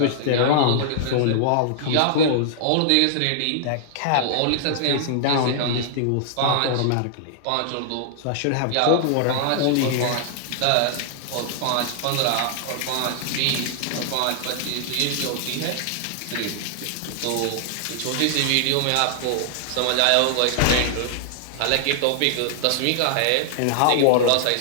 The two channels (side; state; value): both; different; correlation -0.01